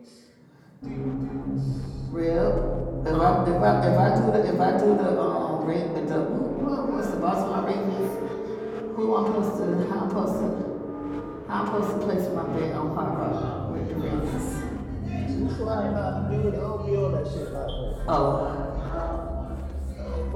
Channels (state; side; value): identical; both; correlation 1.00